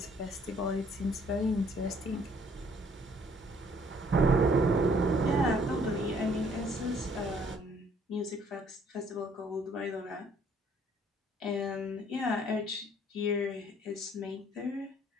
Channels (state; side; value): normal; both; correlation 0.62